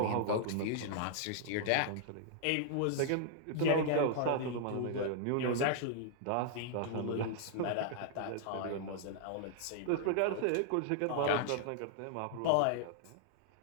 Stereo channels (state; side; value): different; both; correlation -0.01